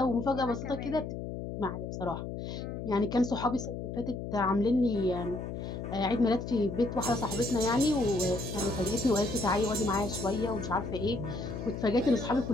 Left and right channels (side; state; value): left; noise; hum, 6 dB below the sound